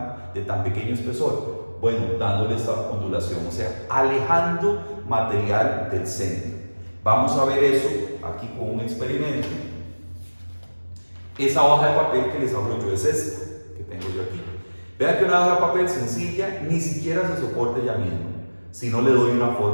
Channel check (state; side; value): inverted; both; correlation -1.00